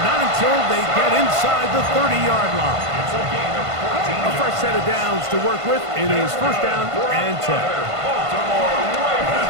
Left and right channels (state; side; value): late; left; 1.5 ms